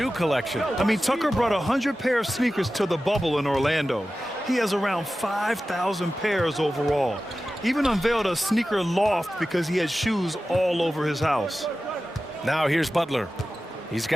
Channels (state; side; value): normal; both; correlation 0.94